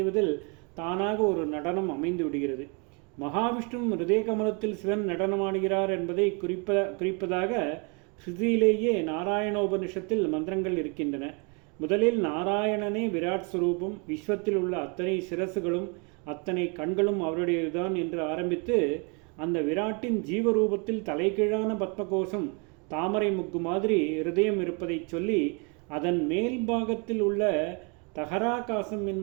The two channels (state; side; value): quieter; left; 33.6 dB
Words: தானாக ஒரு நடனம் அமைந்து விடுகிறது. மகாவிஷ்ணு ஹிருதய கமலத்தில் சிவன் நடனமாடுகிறார் என்பதை குறிப்பதாக ஸ்ருதியிலேயே நாராயணோபனிஷத்தில் மந்திரங்கள் இருக்கின்றன. முதலில் நாராயணனே விராட் ஸ்வரூபம், விஸ்வத்தில் உள்ள அத்தனை சிரசுகளும் அத்தனை கண்களும் அவருடையதுதான் என்று ஆரம்பித்து அந்த விராட்டின் ஜீவரூபத்தில் தலைகீழான பத்மகோஷம் தாமரை முக்கு மாதிரி ஹிருதயம் இருப்பதை சொல்லி அதன் மேல் பாகத்தில் உள்ள தகராகாசம்